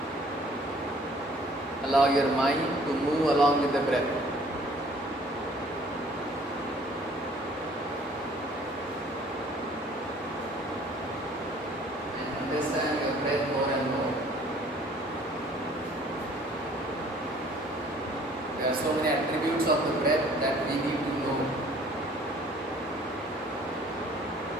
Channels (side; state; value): both; normal; correlation 0.55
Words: Allow your mind to move along with the breath. Understand your breath more and more. There are so many attributes of the breath that we need to know.